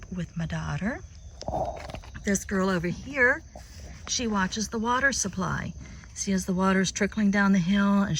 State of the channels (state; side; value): identical; both; correlation 1.00